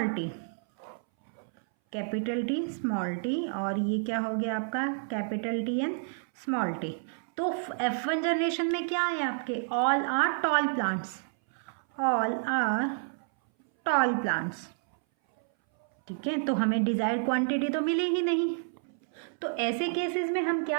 T, capital T small T, और ये क्या हो गया आपका capital T and small T. तो F1 जनरेशन में क्या है आपके, all are tall plants, all are tall plants, ठीक है। तो हमें डिजायर्ड क्वांटिटी तो मिली ही नहीं। तो ऐसे केसेस में हम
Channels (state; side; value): silent; left; 58 dB below the other